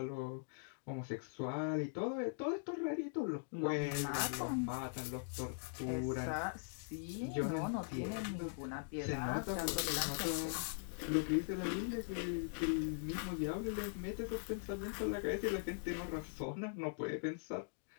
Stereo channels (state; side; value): silent; right; digital silence